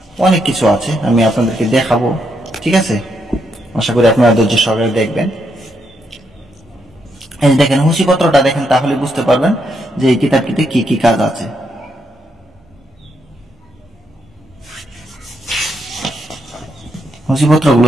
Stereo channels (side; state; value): both; normal; correlation 0.78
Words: অনেক কিছু আছে, আমি আপনাদেরকে দেখাবো, ঠিক আছে। আশা করি আপনারা ধৈর্য সহকারে দেখবেন। এই দেখেন, হুঁশিপত্রটা দেখেন, তাহলে বুঝতে পারবেন যে এই কিতাবটিতে কি কি কাজ আছে। হুঁশিপত্রগুলো